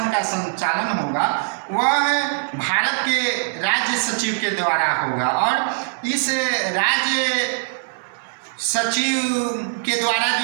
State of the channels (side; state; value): left; silent; 65 dB below the other